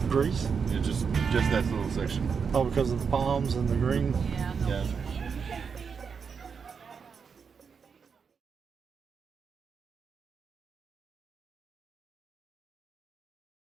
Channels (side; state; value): left; quieter; 6.0 dB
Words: Greece? Yeah, just that little section. Oh, because of the palms and the green. Yeah, no, Yeah. yeah.